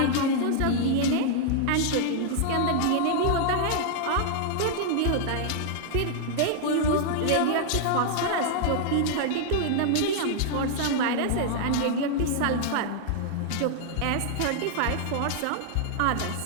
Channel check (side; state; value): both; different; correlation -0.01